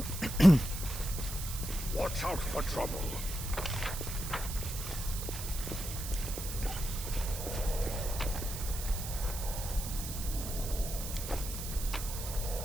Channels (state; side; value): noise; right; hiss, 7 dB below the sound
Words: Watch out for trouble.